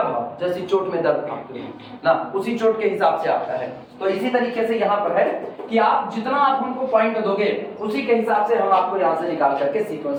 भाव जैसी चोट में दर्द आपके ना, उसी चोट के हिसाब से आता है। तो इसी तरीके से यहाँ पर है कि आप जितना आप हमको पॉइंट दोगे, उसी के हिसाब से हम आपको यहाँ से निकाल करके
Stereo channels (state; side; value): identical; both; correlation 1.00